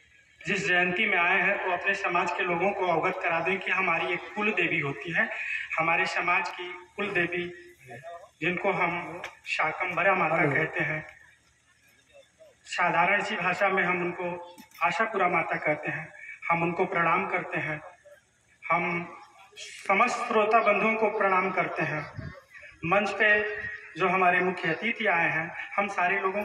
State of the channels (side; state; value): both; identical; correlation 1.00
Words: जिस जयंती में आए हैं तो अपने समाज के लोगों को अवगत करा दें कि हमारी एक कुल देवी होती है। हमारे समाज की कुल देवी जिनको हम शाकंभरा माता कहते हैं, साधारण सी भाषा में हम उनको आशापुरा माता कहते हैं। हम उनको प्रणाम करते हैं। हम समस्त श्रोता बंधुओं को प्रणाम करते हैं। मंच पे जो हमारे मुख्य अतिथि आए हैं, हम सारे लोगों